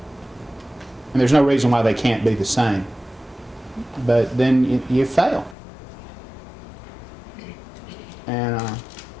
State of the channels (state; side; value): drops out; right; at 5.6 s